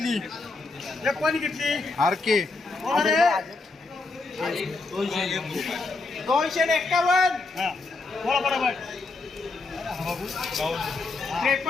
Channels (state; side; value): quieter; right; 3.6 dB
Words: एक कोणी घेतली आर के 251 हा बोला बरोबर